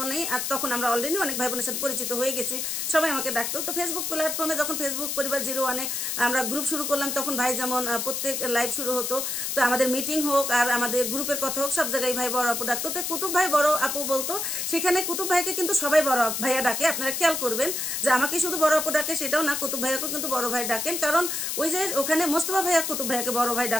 আর তখন আমরা অলরেডি অনেক ভাই বোনের সাথে পরিচিত হয়ে গেছি, সবাই আমাকে ডাকতো। তো ফেসবুক প্ল্যাটফর্মে যখন ফেসবুক পরিবার 01 আমরা গ্রুপ শুরু করলাম, তখন ভাই যেমন প্রত্যেক লাইভ শুরু হতো, তো আমাদের মিটিং হোক আর আমাদের গ্রুপের কথা হোক, সব জায়গায় ভাই বড় আপু ডাকতো। তো কুতুব ভাই বড় আপু বলতো, সেখানে কুতুব ভাইকে কিন্তু সবাই বড় ভাইয়া ডাকে। আপনারা খেয়াল করবেন যে আমাকে শুধু বড় আপু ডাকে সেটাও না, কুতুব ভাইয়াকেও কিন্তু বড় ভাই ডাকেন। কারণ ওই যে ওখানে মোস্তফা ভাইয়া কুতুব ভাইয়াকে বড় ভাই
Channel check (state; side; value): noise; left; hiss, 2 dB below the sound